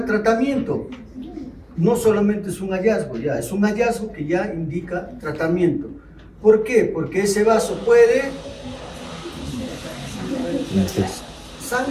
tratamiento. No solamente es un hallazgo, ya es un hallazgo que ya indica tratamiento. ¿Por qué? Porque ese vaso puede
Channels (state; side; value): identical; both; correlation 1.00